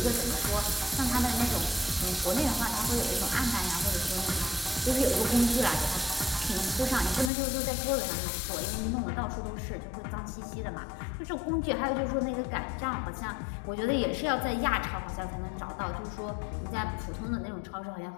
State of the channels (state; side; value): drops out; right; at 7.3 s